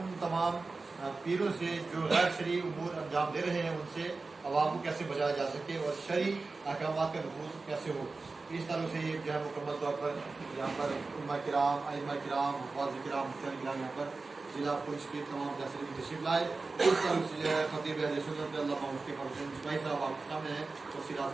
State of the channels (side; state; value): left; quieter; 3.8 dB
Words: تمام پیروں سے جو غیر شرعی امور انجام دے رہے ہیں ان سے عوام کو کیسے بچایا جا سکے اور شرعی احکامات کا نفوذ کیسے ہو، اس طرح سے یہ جو ہے مکمل طور پر یہاں پر علماء کرام، ائمہ کرام، حفاظ کرام، مفتیان کرام یہاں پر ضلع پونچھ کے تمام فیصلے کی تشریف لائے۔ اس طرح سے جو ہے خطیب اہل سنت علامہ مفتی حسین مصباحی صاحب آپ کے سامنے ہیں، تفصیلات